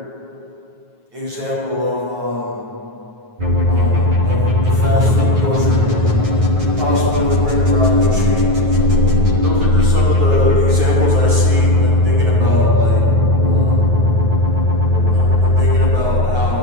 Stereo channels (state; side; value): late; left; 9.3 ms